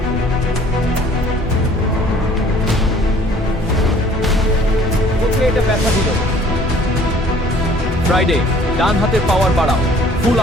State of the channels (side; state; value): both; normal; correlation 0.54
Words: ওকে এটা ব্যথা দিল। ফ্রাইডে ডান হাতের পাওয়ার বাড়াও, ফুল